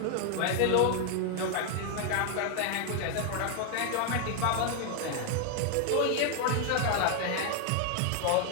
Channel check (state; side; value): different; both; correlation 0.00